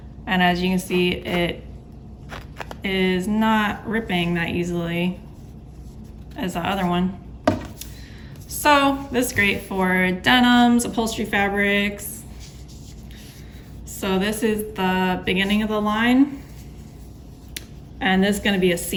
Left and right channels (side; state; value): both; identical; correlation 1.00